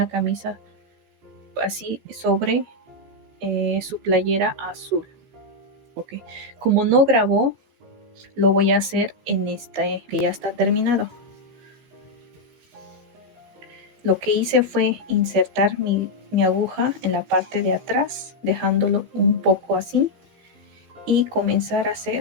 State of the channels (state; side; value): late; left; 15 ms